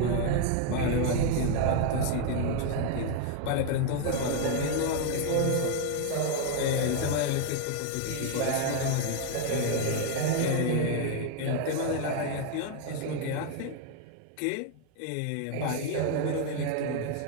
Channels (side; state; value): both; different; correlation 0.01